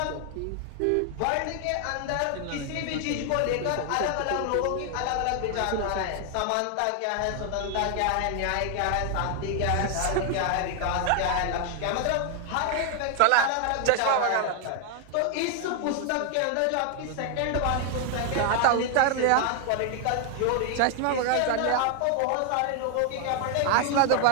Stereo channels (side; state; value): both; different; correlation 0.00